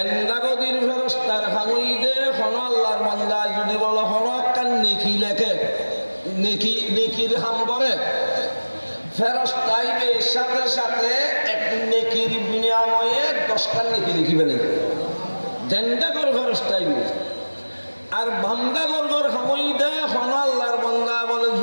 ফেরেশতার হামইদে কোন আল্লাহর বান্দা যদি বলো কোন একটা নেকি লেখে নেকির হাম করে ফেরেশতাইবে সাথে সাথে এক নেকির বিনিময়ে 10টা নেকি লিখিবে না দেন্দাগর ফেরেশতাইবে আর বান্দাগর হামইদে কোন আল্লাহ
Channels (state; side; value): inverted; both; correlation -1.00